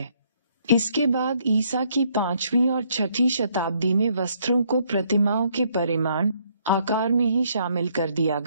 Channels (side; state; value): both; inverted; correlation -0.69